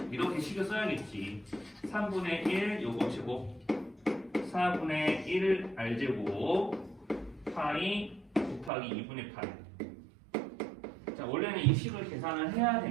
이렇게 식을 써야겠지. 3분의 1 요거 제곱 4분의 1 R제곱 파이 곱하기 2분의 파이. 자, 원래는 이 식을 계산을 해야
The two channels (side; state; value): left; drops out; at 8.7 s